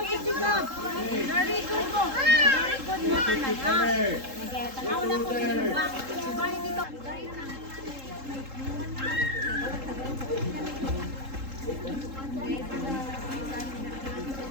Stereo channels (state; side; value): late; left; 3.7 ms